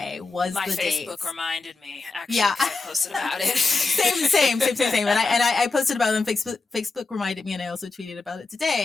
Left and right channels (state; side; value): quieter; right; 3.9 dB